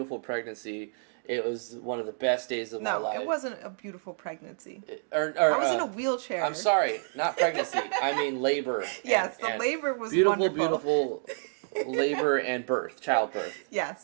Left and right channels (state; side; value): silent; left; digital silence